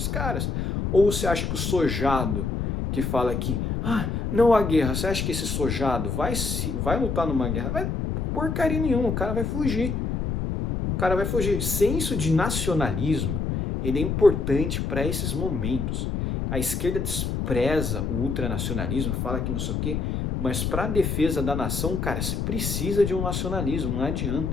caras. Ou você acha que o sojado que fala aqui, não há guerra, você acha que esse sojado vai lutar numa guerra? Vai porcaria nenhuma, o cara vai fugir. O cara vai fugir. Senso de nacionalismo, ele é importante para esses momentos. A esquerda despreza o ultranacionalismo, fala que não sei o quê, mas para a defesa da nação, cara, você precisa de um nacionalismo, não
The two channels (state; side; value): noise; left; rumble, 1 dB below the sound